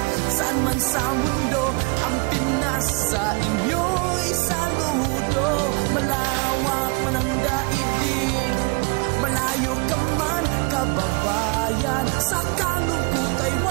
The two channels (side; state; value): left; quieter; 30.0 dB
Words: saan man sa mundo, ang Pinas sa inyo'y saludo. Malawak man ang daigdig, malayo ka man kababayan, sa kalungkot ay